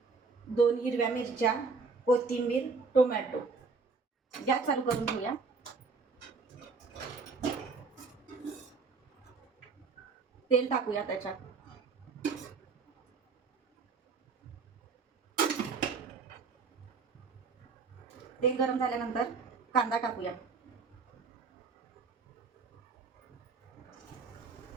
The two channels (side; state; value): left; quieter; 4.6 dB